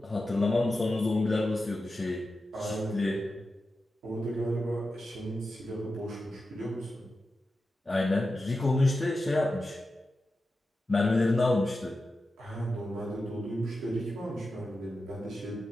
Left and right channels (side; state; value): both; normal; correlation 0.91